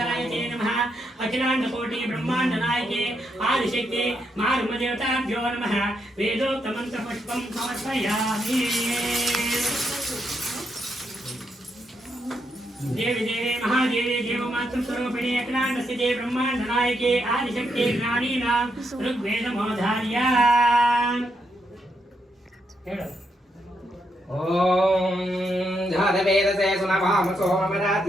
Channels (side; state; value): both; normal; correlation 0.80